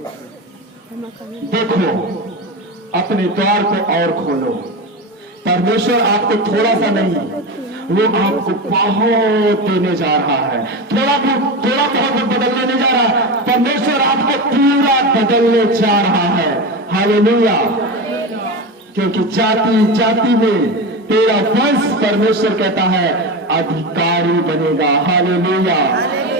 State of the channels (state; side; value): normal; both; correlation 0.22